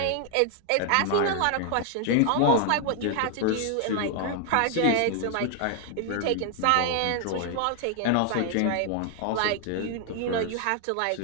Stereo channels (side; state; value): both; different; correlation 0.00